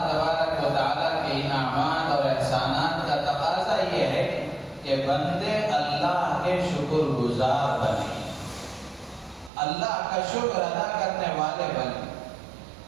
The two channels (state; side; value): drops out; left; at 9.5 s